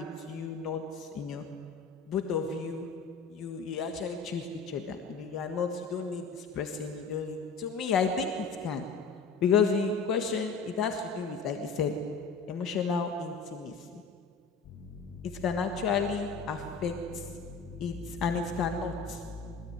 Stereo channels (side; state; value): right; quieter; 4.9 dB